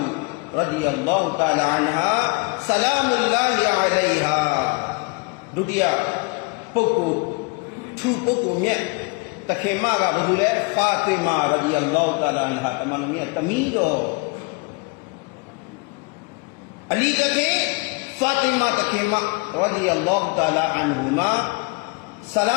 رضي الله تعالى عنها سلام الله عليها ဒုတိယပုဂ္ဂိုလ်သူပုဂ္ဂိုလ်မြတ်တခင်မကဘာလို့လဲဖာတီမာရဒီအလ္လာဟ်တာလာအန်ဟာတမန်တော်မြတ်တမီးတော်အလီတခင်ဖာတီမာတခင်မရဒီအလ္လာဟ်တာလာအန်ဟူမာဆလာ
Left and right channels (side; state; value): right; quieter; 30.2 dB